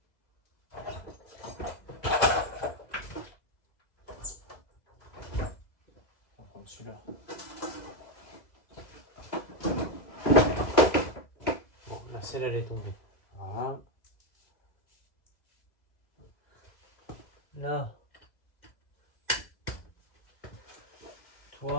On va prendre celui-là. Bon, la selle elle est tombée. Voilà. Là.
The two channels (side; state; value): right; late; 2.0 ms